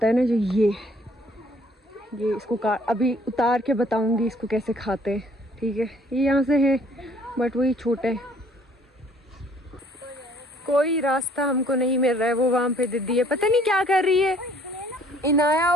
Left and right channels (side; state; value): both; normal; correlation 0.59